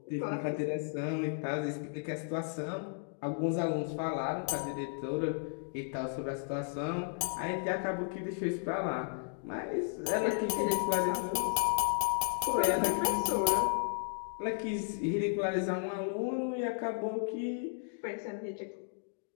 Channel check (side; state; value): right; silent; digital silence